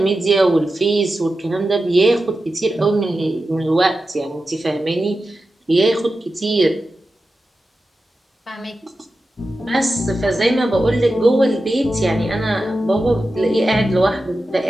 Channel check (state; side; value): normal; both; correlation 0.92